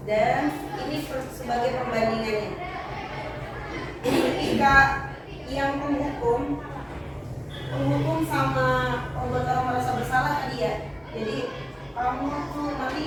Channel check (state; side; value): identical; both; correlation 1.00